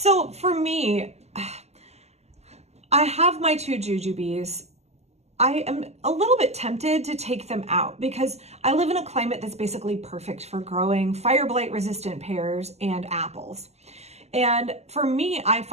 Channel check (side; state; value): left; late; 0.31 ms